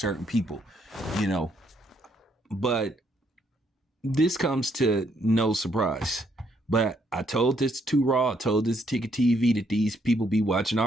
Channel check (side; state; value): both; normal; correlation 0.72